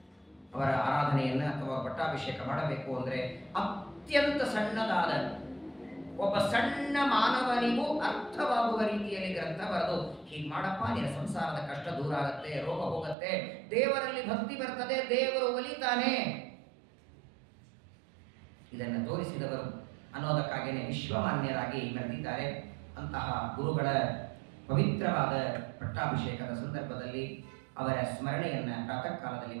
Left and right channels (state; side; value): drops out; left; at 13.2 s